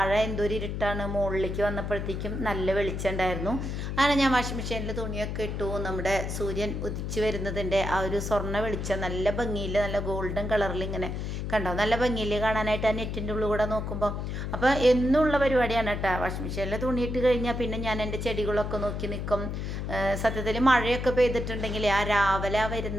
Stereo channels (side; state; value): left; noise; hum, 4 dB below the sound